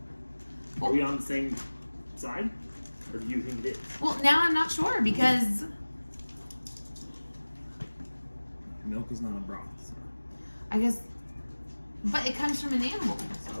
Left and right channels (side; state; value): both; inverted; correlation -1.00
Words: Are we on the same side? Or do you think it is? Well, now I'm not sure because Milk is not a broth. So. I guess, but it comes from an animal.